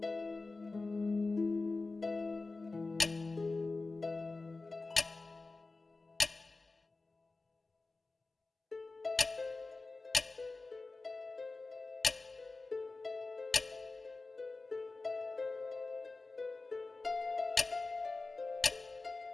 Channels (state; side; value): quieter; right; 3.6 dB